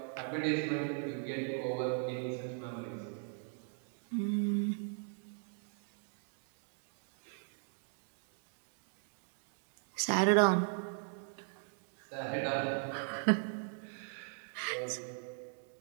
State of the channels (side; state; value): left; silent; 52 dB below the other